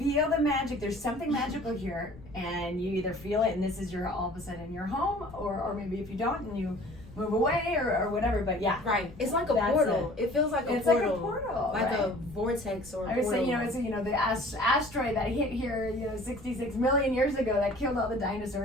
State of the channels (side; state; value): left; noise; rumble, 19 dB below the sound